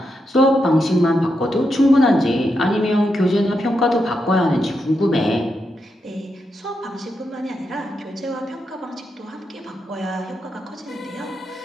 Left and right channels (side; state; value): both; normal; correlation 0.84